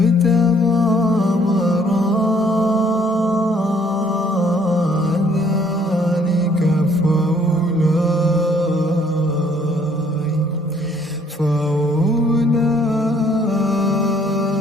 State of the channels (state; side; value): normal; both; correlation 0.63